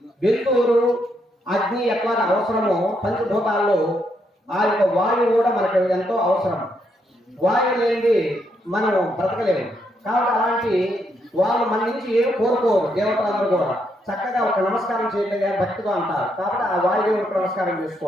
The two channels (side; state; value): both; normal; correlation 0.77